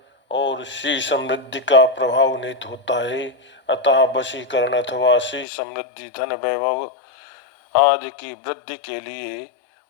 और श्री समृद्धि का प्रभाव निहित होता है। अतः वशीकरण अथवा श्री समृद्धि, धन, वैभव आदि की वृद्धि के लिए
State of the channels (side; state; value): right; drops out; at 5.5 s